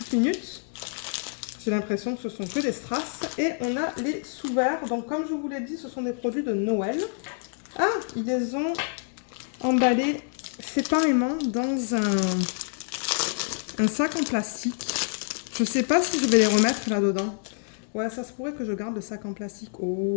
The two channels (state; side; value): silent; right; digital silence